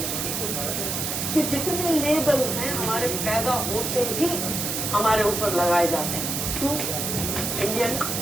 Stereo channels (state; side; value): noise; right; hiss, 2 dB below the sound